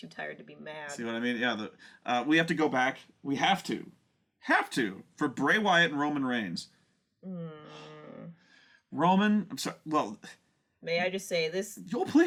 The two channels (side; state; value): both; identical; correlation 1.00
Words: tired to be mad. See what I mean? Yeah, we have to go back. We have to for Bray Wyatt and Roman Reigns. Roman, I'm sorry. Well, may I just say this? Oh,